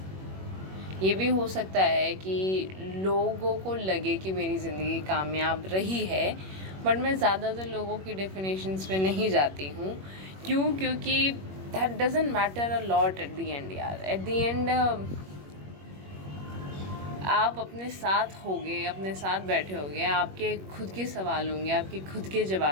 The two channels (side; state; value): left; late; 21 ms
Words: ये भी हो सकता है कि लोगों को लगे कि मेरी ज़िंदगी कामयाब रही है, बट मैं ज़्यादातर लोगों की डेफिनेशंस पे नहीं जाती हूँ। क्योंकि that doesn't matter a lot at the end यार। एट द एंड आप अपने साथ होगे, अपने साथ बैठे होगे, आपके खुद के सवाल होंगे, आपके खुद के